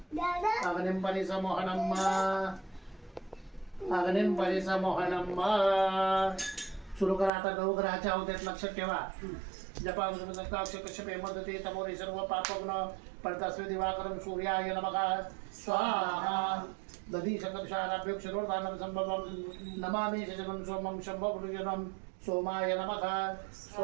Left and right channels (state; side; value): drops out; left; at 7.3 s